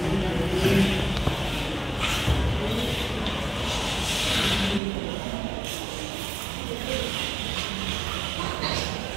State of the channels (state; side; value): drops out; left; at 4.8 s